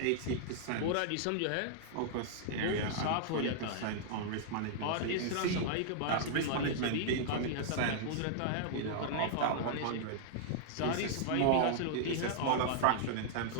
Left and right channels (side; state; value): both; different; correlation -0.01